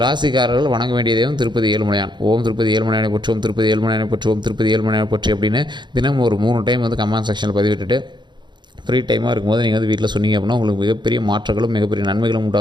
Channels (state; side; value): late; left; 0.22 ms